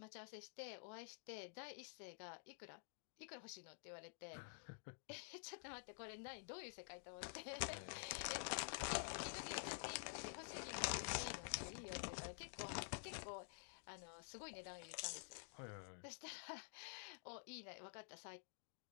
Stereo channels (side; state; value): right; silent; digital silence